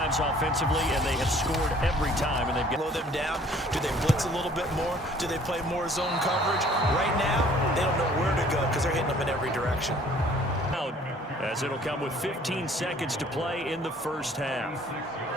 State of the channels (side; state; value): both; normal; correlation 0.56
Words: offensively, and they have scored every time. And they've slow them down. Do they blitz a little bit more? Do they play more zone coverage? Right now, they don't know where to go because they're hitting them in every direction. As it'll come with 15 seconds to play in the first half.